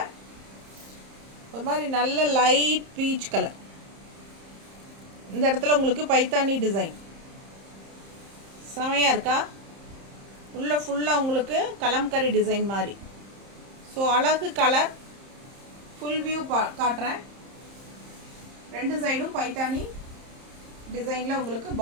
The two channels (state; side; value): late; left; 30 ms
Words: ஒரு மாதிரி நல்ல லைட் பீச் கலர். இந்த இடத்துல உங்களுக்கு பைத்தானி டிசைன் செமையாக இருக்கா? உள்ள ஃபுல்லாக உங்களுக்கு கலம்கரி டிசைன் மாதிரி. ஸோ அழகு கலர். ஃபுல் வியூ காட்டுறேன். ரெண்டு சைடும் பைத்தானி டிசைனில் உங்களுக்கு